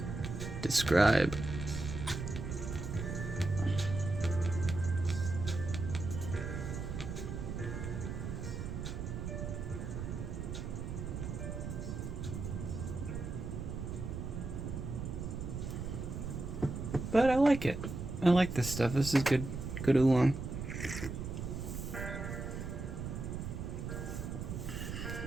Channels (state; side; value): noise; right; rumble, 5 dB below the sound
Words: describe. But I like it. I like this stuff. This is good oolong.